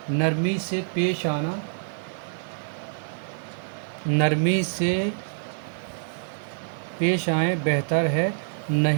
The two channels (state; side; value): silent; left; 59 dB below the other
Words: نرمی سے پیش آنا، نرمی سے پیش آئیں بہتر ہے،